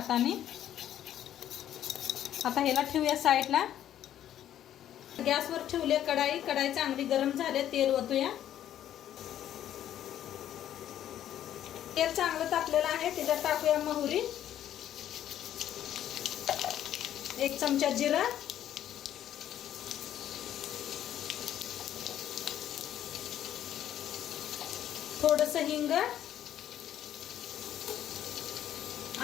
आता ह्याला ठेवूया साईडला। गॅसवर ठेवले कढाई। कढाई चांगली गरम झाले, तेल ओतूया। तेल चांगलं तापलेलं आहे, त्याच्यात टाकूया मोहरी, 1 चमचा जिरा, थोडंसं हिंग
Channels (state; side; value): quieter; right; 11.2 dB